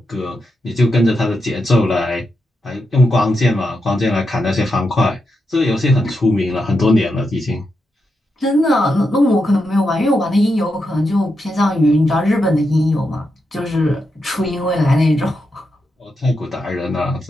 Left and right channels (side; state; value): both; normal; correlation 0.85